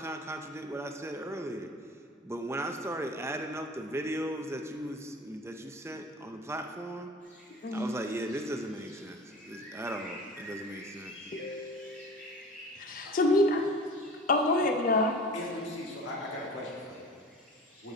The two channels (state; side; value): normal; both; correlation 0.39